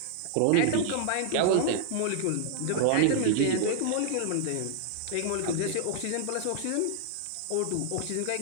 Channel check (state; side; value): different; both; correlation 0.00